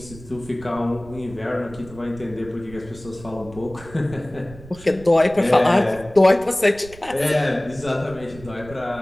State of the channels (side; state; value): right; noise; rumble, 18 dB below the sound